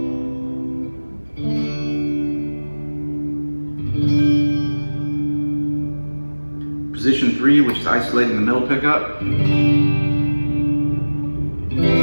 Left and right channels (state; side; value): inverted; both; correlation -1.00